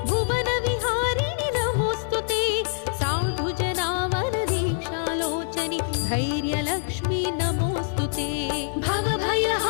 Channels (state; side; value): silent; right; digital silence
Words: भुवनविहारिणि नमोऽस्तु ते साधुजनावनदीक्षालोचनि धैर्यलक्ष्मी नमोऽस्तु ते